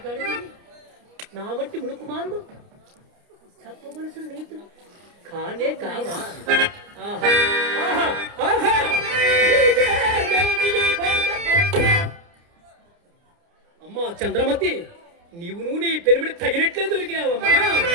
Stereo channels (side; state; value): left; late; 29 ms